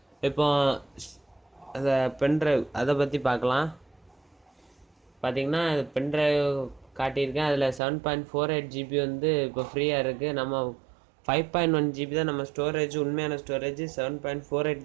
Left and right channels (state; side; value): drops out; left; at 7.8 s